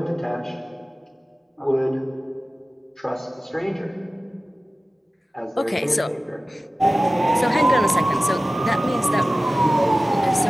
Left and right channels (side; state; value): both; normal; correlation 0.96